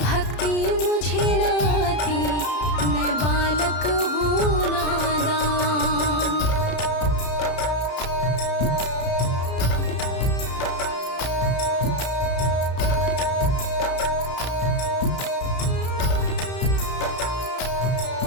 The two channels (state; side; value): late; right; 33 ms